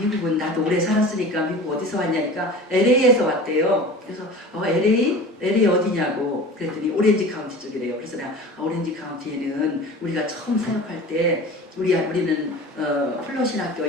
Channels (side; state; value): both; normal; correlation 0.37